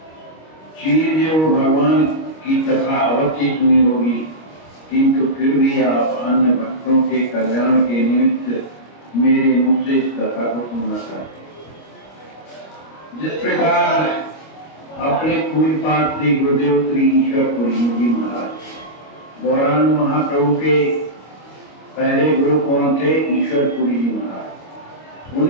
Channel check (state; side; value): late; right; 25 ms